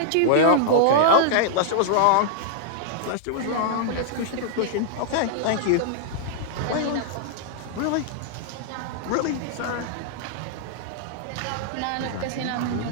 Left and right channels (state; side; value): different; both; correlation -0.01